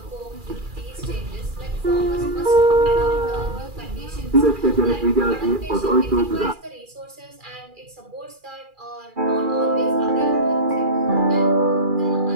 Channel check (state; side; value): late; left; 2.4 ms